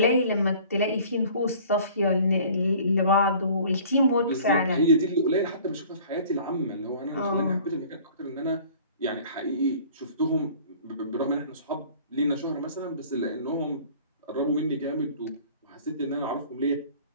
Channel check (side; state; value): both; inverted; correlation -0.49